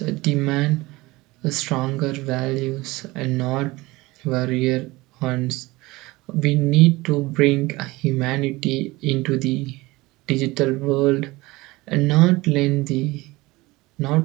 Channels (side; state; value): left; quieter; 21.1 dB